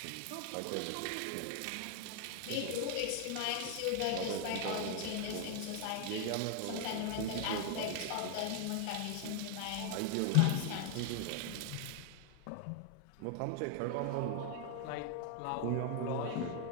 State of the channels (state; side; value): different; both; correlation 0.00